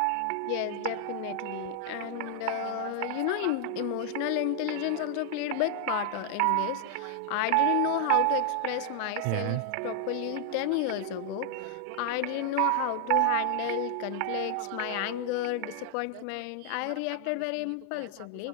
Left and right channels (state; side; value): different; both; correlation 0.00